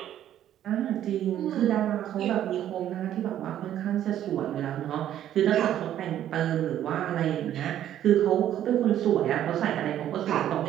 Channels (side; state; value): left; quieter; 11.4 dB